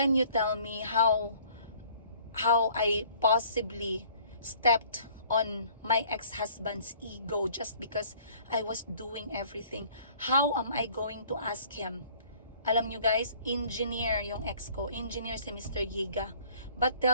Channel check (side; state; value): both; inverted; correlation -0.55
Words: you tell me how I possibly stepped on my ex-husband's ego just because I was doing everything. How am I going to ask him? Alam nyo guys, engineer yung ex ko. Engineer si Mr. Yiga. But